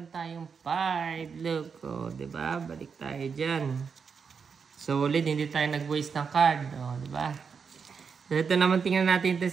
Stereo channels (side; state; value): left; quieter; 5.9 dB